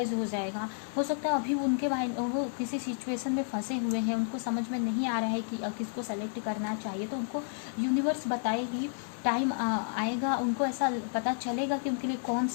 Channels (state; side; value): silent; right; digital silence